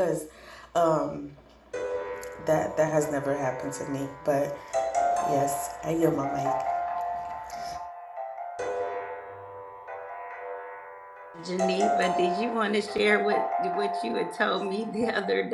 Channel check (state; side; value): identical; both; correlation 1.00